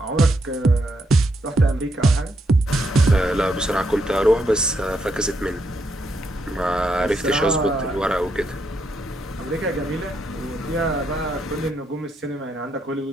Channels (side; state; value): both; normal; correlation 0.78